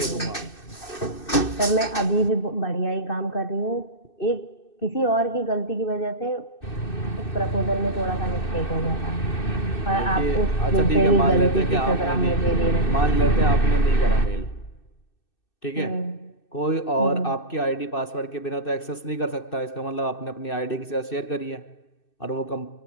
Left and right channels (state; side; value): late; right; 2.6 ms